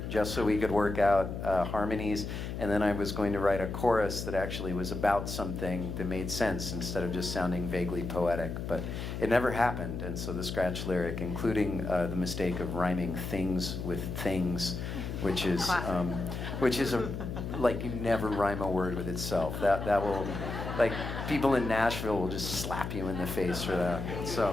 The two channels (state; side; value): noise; left; hum, 6 dB below the sound